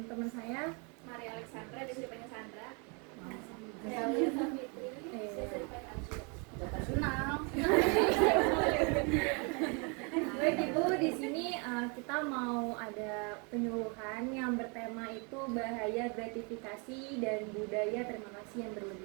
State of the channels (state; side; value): quieter; left; 33.8 dB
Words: teman saya Maria Alexandra, dia dipanggil Sandra. Saya Fitri, saya dipanggil Arsya. Kenal. Baik Ibu, di sini kita mau ada penyuluhan yang bertema itu bahaya gratifikasi dan budaya terima kasih yang